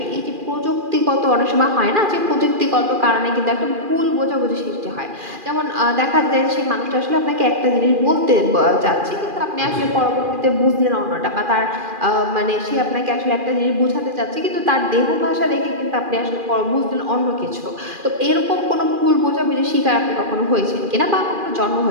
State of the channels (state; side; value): late; left; 2.4 ms